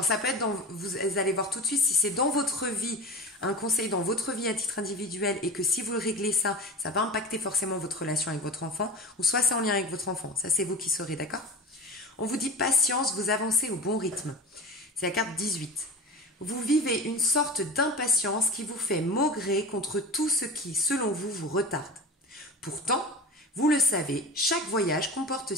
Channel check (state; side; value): normal; both; correlation 0.32